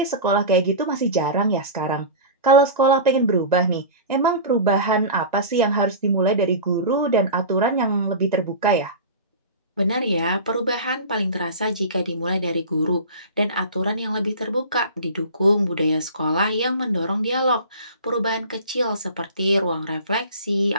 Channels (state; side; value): inverted; both; correlation -0.32